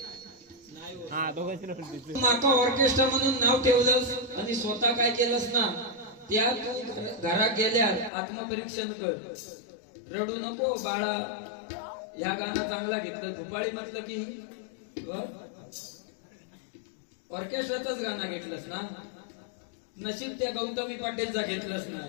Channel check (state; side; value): drops out; right; at 8.1 s